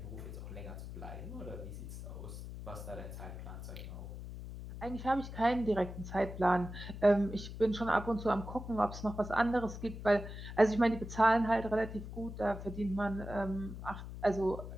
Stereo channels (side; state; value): left; noise; hum, 9 dB below the sound